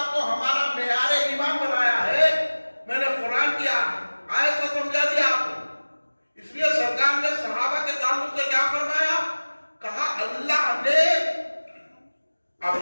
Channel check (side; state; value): both; inverted; correlation -1.00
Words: کو ہمارا معیار ایمان بنایا ہے، میں نے قرآن کی آیت کو سمجھا دیا آپ کو. اس لیے سرکار نے صحابہ کے تعلق سے کیا فرمایا؟ کہا اللہ نے